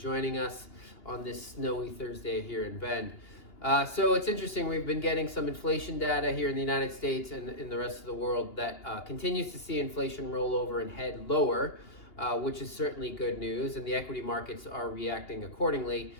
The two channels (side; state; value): right; late; 2.8 ms